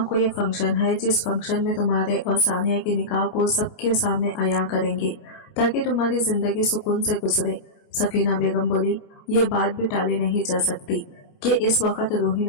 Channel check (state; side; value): late; right; 29 ms